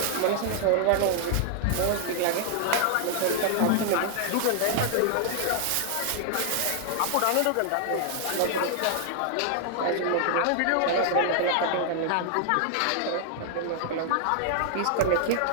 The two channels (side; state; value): both; different; correlation 0.00